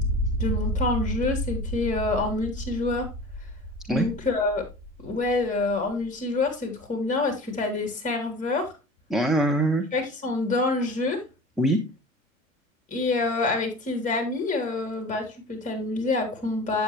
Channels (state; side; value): normal; both; correlation 0.38